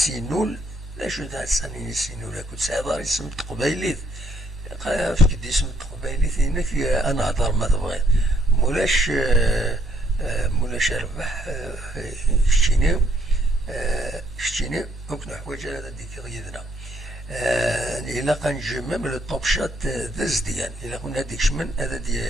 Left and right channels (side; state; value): both; normal; correlation 0.69